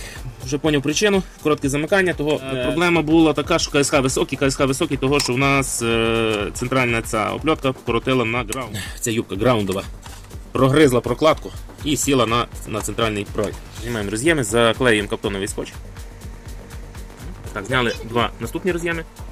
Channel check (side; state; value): both; identical; correlation 1.00